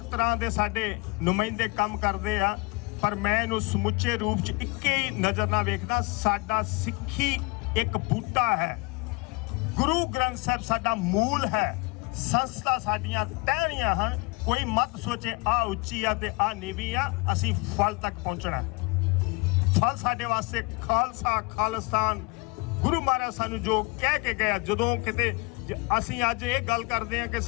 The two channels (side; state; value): right; quieter; 27.3 dB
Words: ਤਰ੍ਹਾਂ ਦੇ ਸਾਡੇ ਨੁਮਾਇੰਦੇ ਕੰਮ ਕਰਦੇ ਆ, ਪਰ ਮੈਂ ਇਹਨੂੰ ਸਮੁੱਚੇ ਰੂਪ 'ਚ ਇੱਕੇ ਹੀ ਨਜ਼ਰ ਨਾਲ ਵੇਖਦਾ। ਸਾਡਾ ਸਿੱਖੀ ਇੱਕ ਬੂਟਾ ਹੈ, ਗੁਰੂ ਗ੍ਰੰਥ ਸਾਹਿਬ ਸਾਡਾ ਮੂਲ ਹੈ, ਸੰਸਥਾ ਸਾਡੀਆਂ ਟਹਿਣੀਆਂ ਹਨ। ਕੋਈ ਮਤ ਸੋਚੇ ਆ ਉੱਚੀ ਆ ਤੇ ਆ ਨੀਵੀਂ ਆ, ਅਸੀਂ ਫਲ ਤੱਕ ਪਹੁੰਚਣਾ। ਫਲ ਸਾਡੇ ਵਾਸਤੇ ਖਾਲਸਾ, ਖਾਲਿਸਤਾਨ, ਗੁਰੂ ਮਹਾਰਾਜ ਸਾਨੂੰ ਜੋ ਕਹਿ ਕੇ ਗਿਆ। ਜਦੋਂ ਕਿਤੇ ਅਸੀਂ ਅੱਜ ਇਹ ਗੱਲ ਕਰਦੇ ਹਾਂ ਕਿ